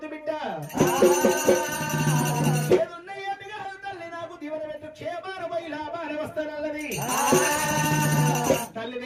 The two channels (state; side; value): identical; both; correlation 1.00